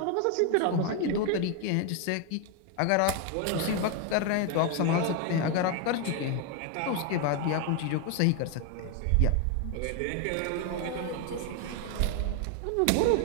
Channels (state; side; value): different; both; correlation 0.01